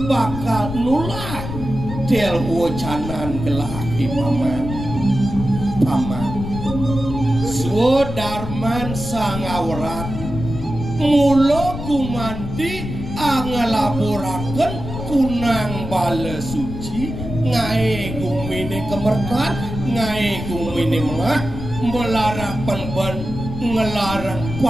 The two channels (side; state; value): left; noise; rumble, 7 dB below the sound